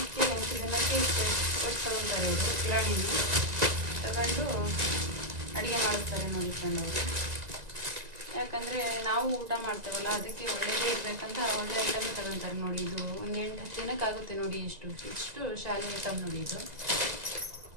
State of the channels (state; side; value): late; left; 2.0 ms